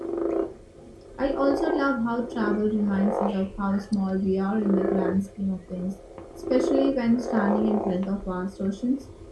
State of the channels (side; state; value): both; identical; correlation 1.00